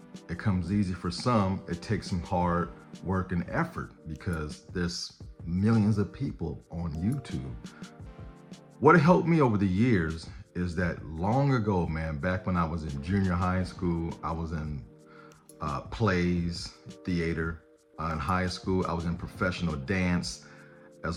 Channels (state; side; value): identical; both; correlation 1.00